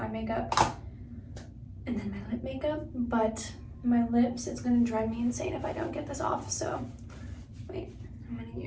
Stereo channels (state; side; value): identical; both; correlation 1.00